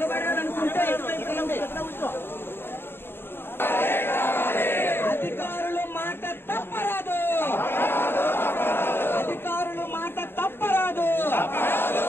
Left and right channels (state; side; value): late; right; 0.11 ms